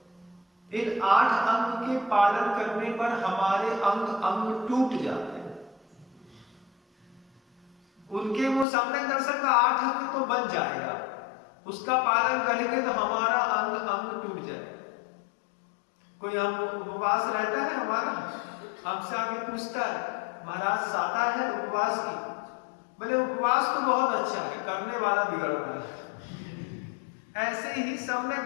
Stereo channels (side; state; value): right; drops out; at 8.7 s